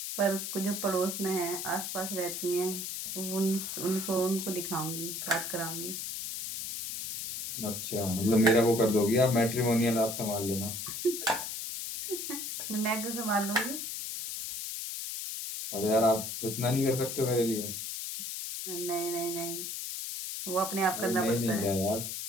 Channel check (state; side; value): noise; left; hiss, 5 dB below the sound